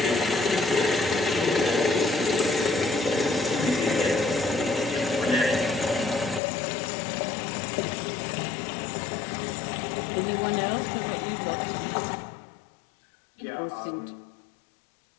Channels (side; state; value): right; drops out; at 6.4 s